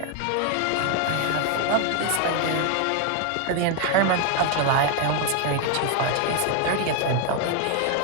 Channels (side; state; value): both; different; correlation 0.01